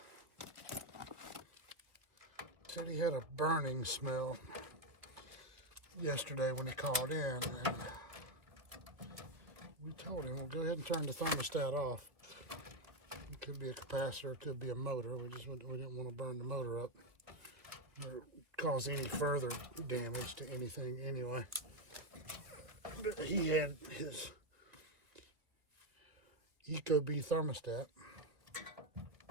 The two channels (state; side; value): late; left; 1.8 ms